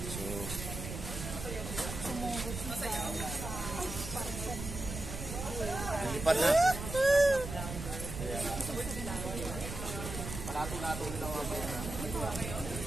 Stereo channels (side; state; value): right; noise; rumble, 7 dB below the sound